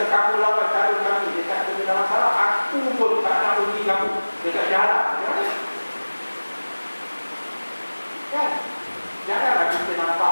kamu lawan calon kami dekat Kota dalam masalah, aku pun tak nak uji kamu dekat jalan. Macam mana? Kan? Janganlah kita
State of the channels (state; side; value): inverted; both; correlation -1.00